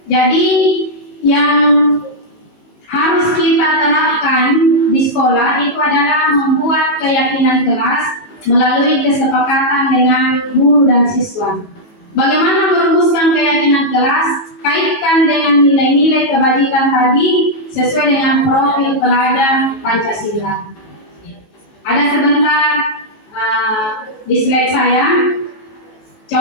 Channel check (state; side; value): late; right; 18 ms